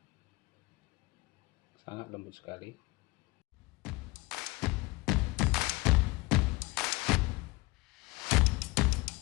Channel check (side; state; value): right; quieter; 22.9 dB